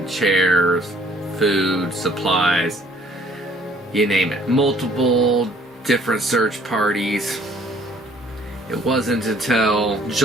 chairs, food, supplies, you name it. Multiple different search parties. It wasn't until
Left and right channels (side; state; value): both; normal; correlation 0.59